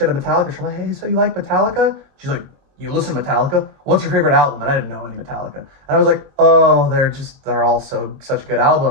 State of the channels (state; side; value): late; left; 22 ms